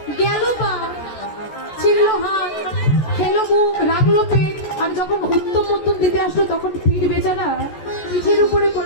গেল পা, ছিঁড়লো হাত, খেলো মুখ, রাখলো পেট, আর যখন উত্তম মধ্যম দিতে আসলো তখন পিঠ বেচারা পিঠের উপরে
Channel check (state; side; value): late; right; 14 ms